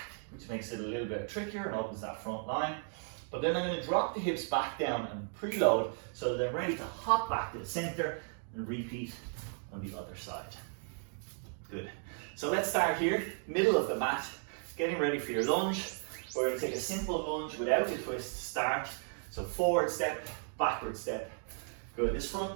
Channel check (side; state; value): left; silent; 54 dB below the other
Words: which makes it a little bit trickier and opens that front line. But then I'm going to drop the hips back down and preload so that I'm ready to hop back to the center and repeat on the other side. Good. So let's start here, middle of the mat, getting ready for your lunge. We're going to take a simple lunge without a twist to start. So forward step, backward step. Good. This